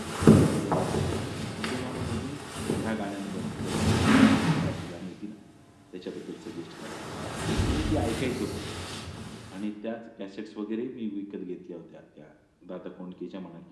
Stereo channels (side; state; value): both; identical; correlation 1.00